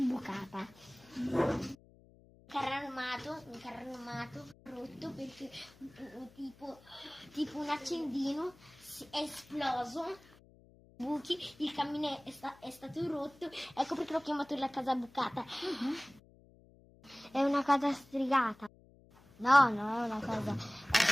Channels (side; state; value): left; noise; hum, 25 dB below the sound